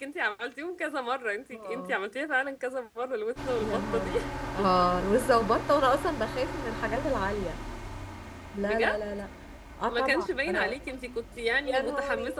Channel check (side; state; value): both; identical; correlation 1.00